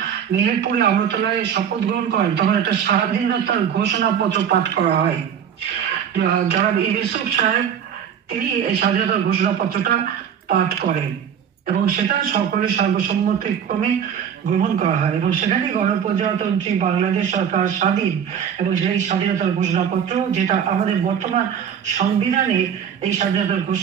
মেহেরপুরে আমরতলায় শপথ গ্রহণ করেন তখন একটা স্বাধীনতার ঘোষণাপত্র পাঠ করা হয়। যারা ইউসুফ সাহেব তিনি এই স্বাধীনতার ঘোষণাপত্রটা পাঠ করেন এবং সেটা সকলের সর্বসম্মতিক্রমে গ্রহণ করা হয় এবং সেখানে গণপ্রজাতন্ত্রী বাংলাদেশ সরকার স্বাধীন এবং সেই স্বাধীনতার ঘোষণাপত্র, যেটা আমাদের বর্তমান সংবিধানে এই স্বাধীনতার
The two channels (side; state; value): left; quieter; 8.3 dB